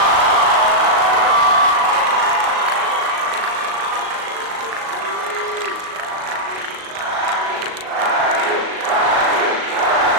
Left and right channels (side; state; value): left; late; 38 ms